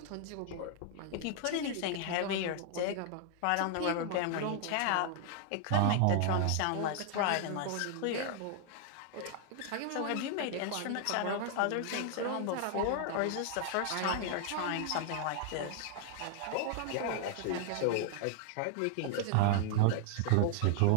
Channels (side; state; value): both; different; correlation 0.00